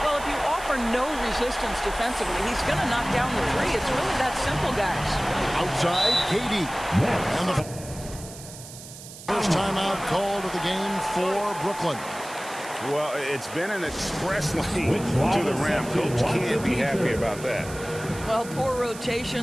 Well, if you offer no resistance defensively, he's going to knock down the 3. It's really that simple, guys. Outside, KD. And the first timeout called of the game for Brooklyn. Well, it's been an express lane to the rim. Coach can't be happy about that. Well, poor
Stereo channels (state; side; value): noise; right; hiss, 15 dB below the sound